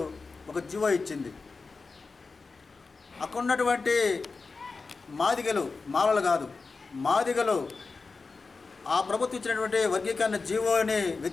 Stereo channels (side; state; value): right; quieter; 4.2 dB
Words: ఒక జీవో ఇచ్చింది. అక్కడ ఉన్నటువంటి మాదిగలు, మాలలు కాదు మాదిగలు ఆ ప్రభుత్వం ఇచ్చినటువంటి వర్గీకరణ జీవోని